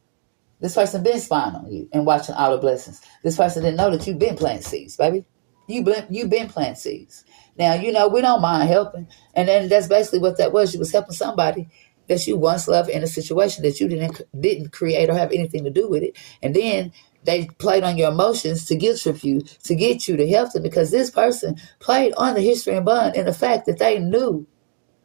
This person been spying on you and watching all the blessings. This person didn't know that you've been planting seeds, baby. You've been planting seeds. Now, we don't mind helping. And then that's basically what that was. You was helping somebody that you once loved in a situation that you didn't create or have anything to do with it. And then they played on your emotions to guilt trip you, to get you to help them, because this person played on the history and bond and the fact that they knew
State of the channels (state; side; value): silent; left; digital silence